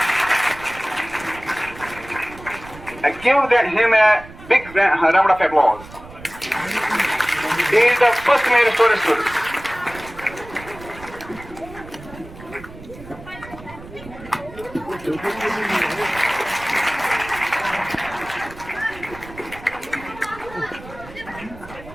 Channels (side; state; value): right; noise; rumble, 17 dB below the sound